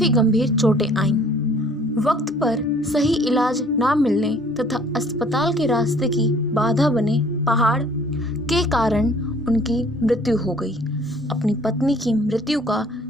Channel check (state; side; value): normal; both; correlation 0.55